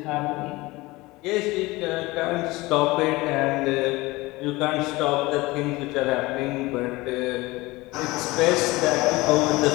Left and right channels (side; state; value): right; quieter; 21.3 dB